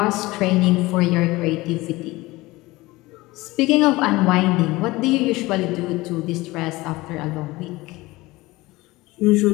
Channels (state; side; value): quieter; right; 20.3 dB